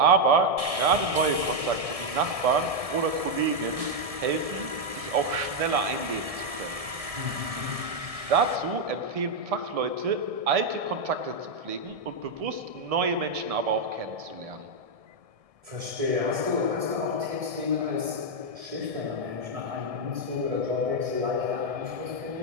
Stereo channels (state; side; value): late; left; 1.7 ms